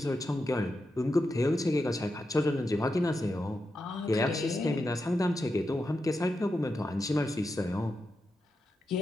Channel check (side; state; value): both; normal; correlation 0.87